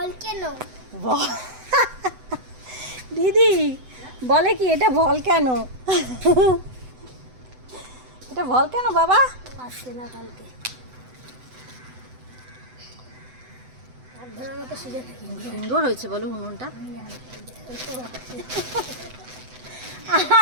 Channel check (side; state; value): left; late; 7.9 ms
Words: দিদি বলে কি এটা ভলক্যানো? এটা ভলক্যানো বাবা? আসছে না কালকে। ধরার মতো সুযোগ থাকি। সুন্দর হয়েছে বলো উনুনটা।